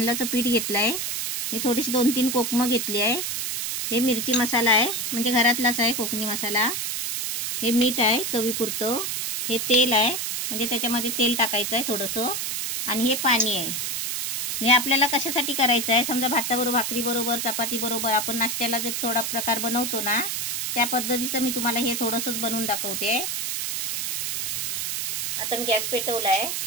पीठ घेतलंय. हे थोडीशी 2-3 कोकमं घेतली आहे. हे मिरची मसाला आहे, म्हणजे घरातलाच आहे कोकणी मसाला. हे मीठ आहे चवीपुरतं. हे तेल आहे, म्हणजे त्याच्यामध्ये तेल टाकायचं आहे थोडंसं. आणि हे पाणी आहे. हे आपल्याला कशासाठी करायचं आहे, समजा भाताबरोबर, भाकरीबरोबर, चपातीबरोबर आपण नाश्त्याला जर थोडा प्रकार बनवतो ना, त्या पद्धतीचं मी तुम्हाला हे थोडंसंच बनवून दाखवते. आता मी गॅस पेटवला आहे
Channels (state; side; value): noise; right; hiss, 2 dB below the sound